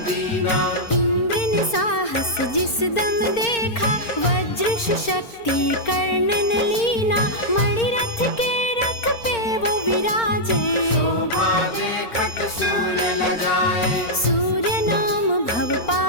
दीना। इंद्र ने साहस जिस दम देखा, वज्र शक्ति कर्ण ने लीना। मणिरथ के रथ पे वो विराजे, शोभा देखत सूर्य लगाए। सूर्य नाम भव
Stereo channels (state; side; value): late; right; 4.4 ms